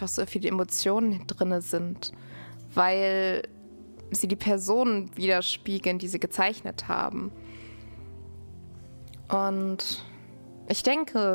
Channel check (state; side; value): inverted; both; correlation -1.00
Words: so viele Emotionen drin sind, weil sie die Personen widerspiegeln, die sie gezeichnet haben. Und ich